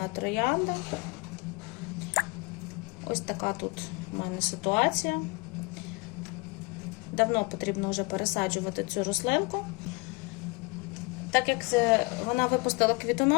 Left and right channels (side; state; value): right; quieter; 27.4 dB